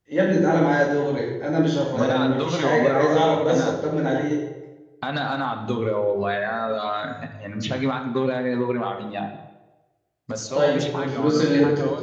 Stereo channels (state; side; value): identical; both; correlation 1.00